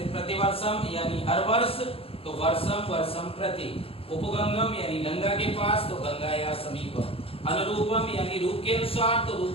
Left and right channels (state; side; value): late; right; 0.27 ms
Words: प्रतिवर्षम यानी हर वर्ष, तो वर्षम वर्षम प्रति। उपगंगम यानी गंगा के पास, तो गंगा या समीप। अनुरूपम यानी रूप के अनुसार, तो